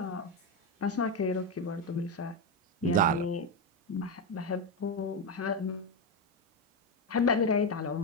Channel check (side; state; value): both; normal; correlation 0.10